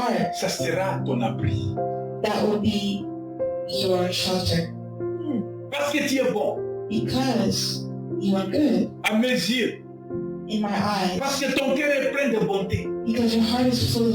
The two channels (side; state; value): both; identical; correlation 1.00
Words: ça sera ton abri. that will be your shelter. Parce que tu es bon, Because you are good à mes yeux. in my eyes. Parce que ton cœur est plein de bonté. Because your heart is full